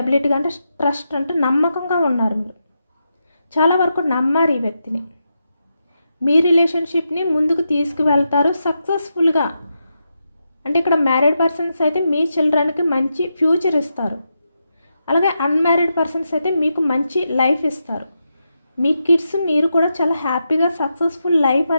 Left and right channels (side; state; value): both; inverted; correlation -0.86